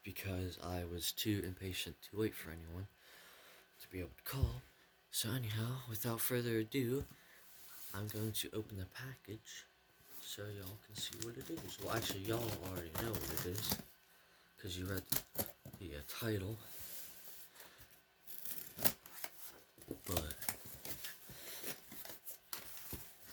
because I was too impatient to wait for anyone to be able to call. So anyhow, without further ado, I'm going to open the package so y'all can see what it is. Well, actually, y'all already know what it is because you read the title, but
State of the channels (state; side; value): identical; both; correlation 1.00